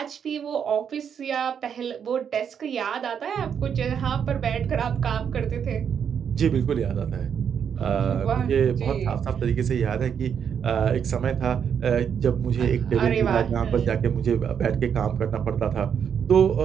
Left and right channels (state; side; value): quieter; left; 7.7 dB